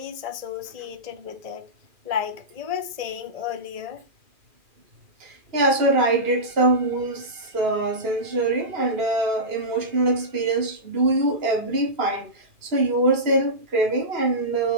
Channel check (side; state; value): left; late; 2.4 ms